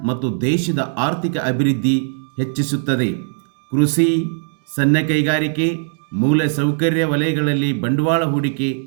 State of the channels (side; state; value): left; silent; digital silence